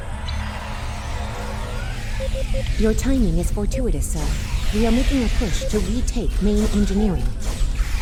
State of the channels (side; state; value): both; identical; correlation 1.00